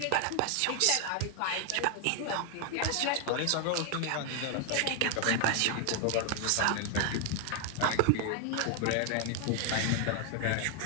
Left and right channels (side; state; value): both; different; correlation 0.00